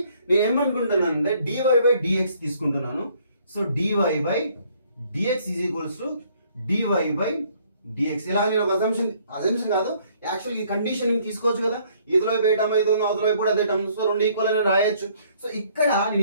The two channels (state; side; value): inverted; both; correlation -0.63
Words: నేను ఏమనుకుంటున్నాను అంటే dy/dx తీసుకుంటున్నాను. So dy/dx is equals to dy/dx. ఇలా నేను ఒక అజంప్షన్ కాదు, యాక్చువల్ ఈ కండిషన్ తీసుకోవచ్చు కదా, ఇదిలో వైపు ఏ టర్మ్ అయితే ఉందో అవతల వైపు కూడా అదే టర్మ్, సో రెండు ఈక్వల్ అని రాయొచ్చు. సో ఇక్కడ నేను